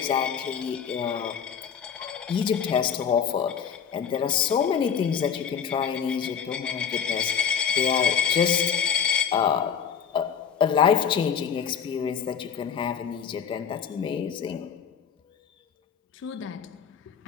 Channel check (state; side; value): quieter; right; 7.5 dB